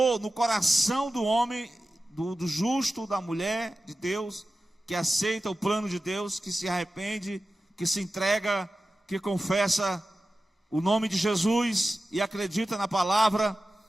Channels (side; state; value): both; normal; correlation 0.94